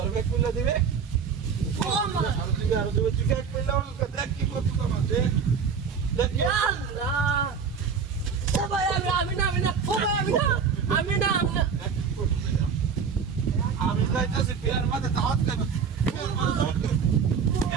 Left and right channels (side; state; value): left; quieter; 6.2 dB